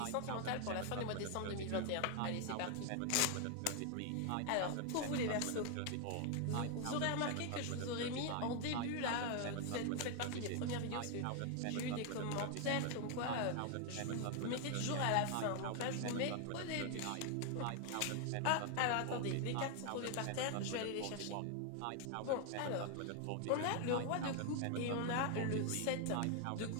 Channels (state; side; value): different; both; correlation 0.00